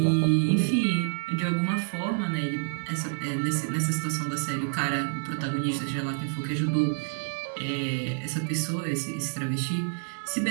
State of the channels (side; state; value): left; silent; digital silence